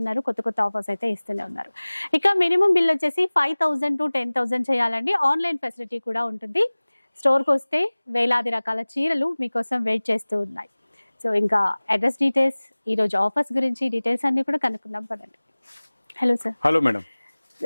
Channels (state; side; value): inverted; both; correlation -1.00